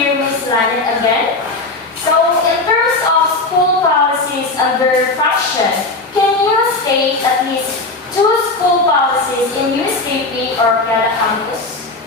Ms. Lanet again. So, in terms of school policies under fashion, can you state at least 2 school policies in USKP or Canada campus?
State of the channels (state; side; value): quieter; right; 3.2 dB